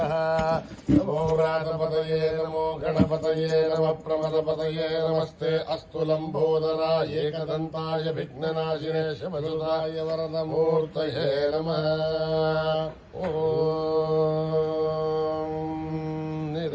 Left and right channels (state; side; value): identical; both; correlation 1.00